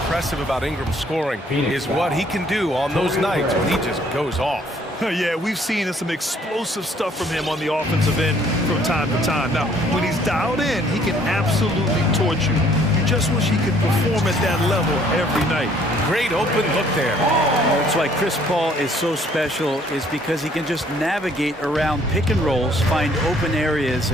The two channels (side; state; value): both; normal; correlation 0.62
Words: about Ingram's scoring is what he can do on those nights when he just goes off. Yeah, we've seen some explosive stuff from him on the offensive end from time to time. Now, when he's dialed in, he can absolutely torch you. You just wish he could perform at that level every night. Great open look there. That's why Chris Paul is so special, is because he can just navigate around pick and rolls, find open areas,